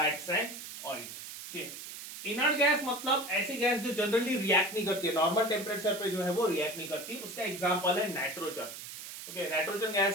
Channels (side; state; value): right; noise; hiss, 11 dB below the sound